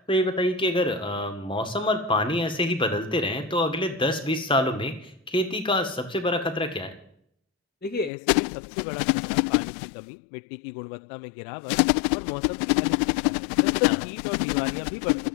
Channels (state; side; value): drops out; right; at 8.1 s